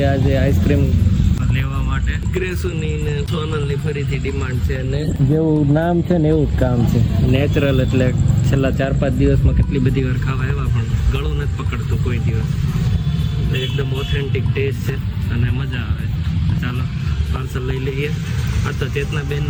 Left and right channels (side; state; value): both; identical; correlation 1.00